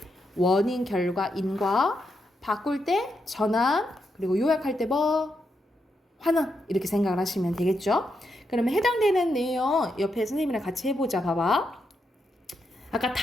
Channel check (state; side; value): normal; both; correlation 0.83